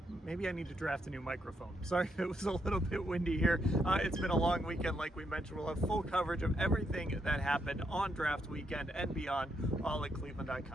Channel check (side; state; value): both; normal; correlation 0.78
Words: Maybe I need to draft a new microphone. Sorry if it was a little bit windy here. It's been a long weekend, like we mentioned. We'll have full coverage of everything that happened on draft weekend and beyond, all at